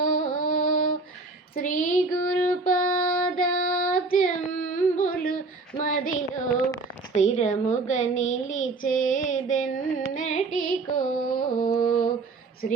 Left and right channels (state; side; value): quieter; left; 3.7 dB